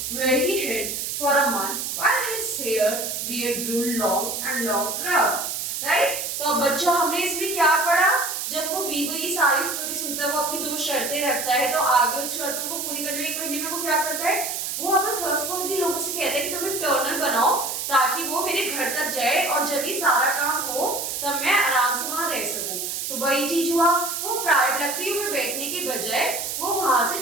where he hid for a month while his hair beard grew long and rough. Right तो अब बच्चों हमने इसमें क्या पढ़ा, जब वो बीबल ये सारी स्टोरी सुनता है वो अपनी 2 शर्तें रखता है, तो आगे उस शर्तों को पूरी करने में 1 महीने में वो क्या करता है, वो अपने ट्रस्टवर्दी लोगों से कहता है कि तुम एक टर्नल बनाओ ताकि वो मेरे घर तक जाए और जब ये सारा काम हो तब मैं आराम से वहां रह सकूं। तो वही चीज हुआ, वो प्राइवेट लकड़ियों में बैठने के बजाय वो वहां से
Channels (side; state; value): right; noise; hiss, 3 dB below the sound